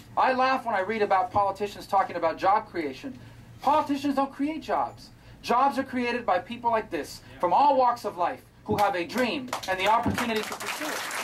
I laugh when I read about politicians talking about job creation. Politicians don't create jobs. Jobs are created by people like this, from all walks of life, who have a dream and the opportunity to pursue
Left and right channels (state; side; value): identical; both; correlation 1.00